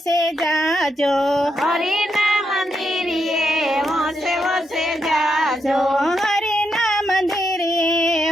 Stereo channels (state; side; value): normal; both; correlation 0.82